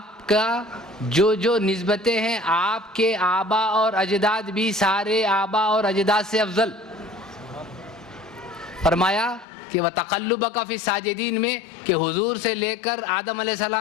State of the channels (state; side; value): drops out; right; at 9.5 s